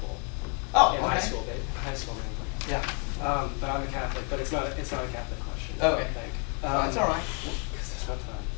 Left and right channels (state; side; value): quieter; right; 37.9 dB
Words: Oh, in okay. high school, man. Yeah. But I'm a Catholic, but it's not a Catholic question. Okay. I think. That's all right. Because there's